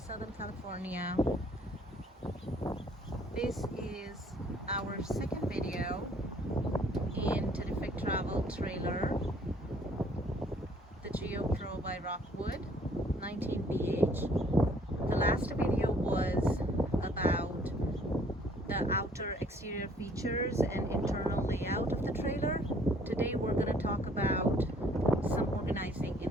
California. This is our second video in Terrific Travel Trailer, the GeoPro by Rockwood 19BH. The last video was about the outer exterior features and internal layout of the trailer. Today we're going to talk about some organizing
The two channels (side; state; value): both; normal; correlation 0.60